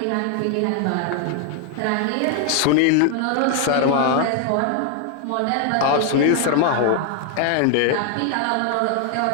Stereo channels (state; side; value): different; both; correlation 0.00